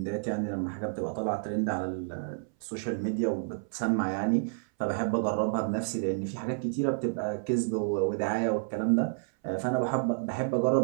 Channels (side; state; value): left; silent; 58 dB below the other